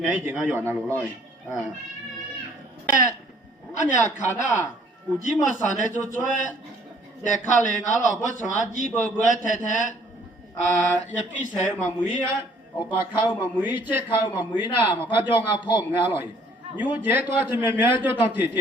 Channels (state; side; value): normal; both; correlation 0.60